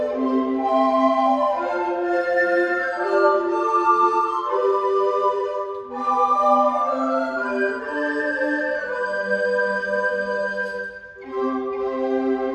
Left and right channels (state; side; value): identical; both; correlation 1.00